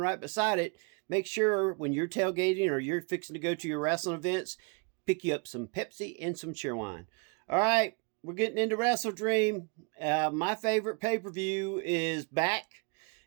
right beside it. Make sure when you're tailgating or you're fixing to go to your wrestling events, pick you up some Pepsi and some Cheerwine. All right, we're getting into Wrestle Dream. My favorite pay-per-view is back,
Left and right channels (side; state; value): left; quieter; 33.8 dB